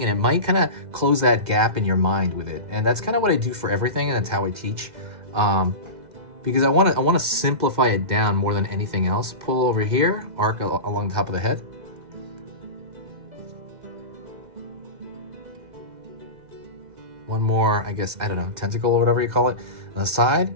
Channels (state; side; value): late; left; 2.0 ms